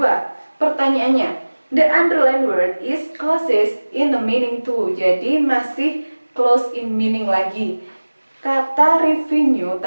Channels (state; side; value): inverted; both; correlation -1.00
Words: Pertanyaannya, the underlined word is closest in the meaning to. Jadi masih close in meaning lagi. Kata revenue